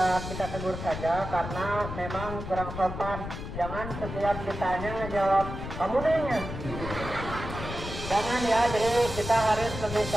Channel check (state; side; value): noise; left; rumble, 7 dB below the sound